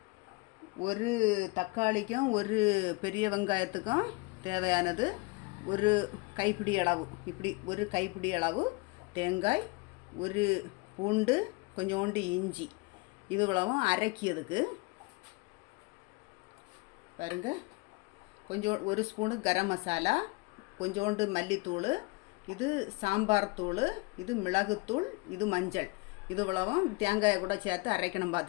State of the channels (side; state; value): right; quieter; 26.2 dB